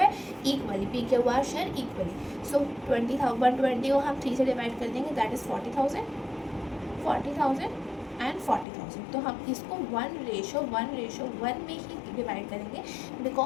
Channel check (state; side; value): drops out; right; at 8.7 s